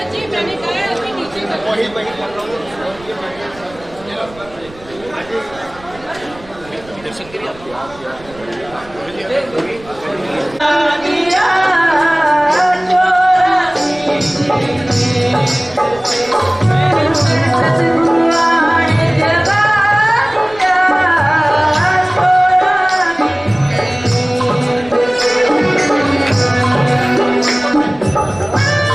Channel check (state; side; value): noise; right; rumble, 22 dB below the sound